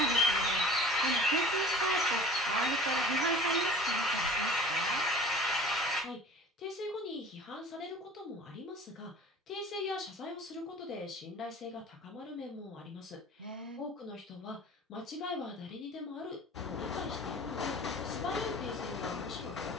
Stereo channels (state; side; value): normal; both; correlation 0.42